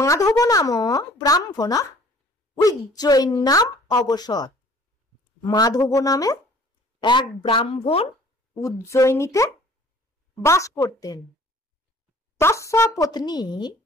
নাম ব্রাহ্মণ উজ্জয়িন নাম অবসর। মাধব নামে এক ব্রাহ্মণ উজ্জয়িনীতে বাস করতেন। তস্য পত্নী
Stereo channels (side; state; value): both; normal; correlation 0.52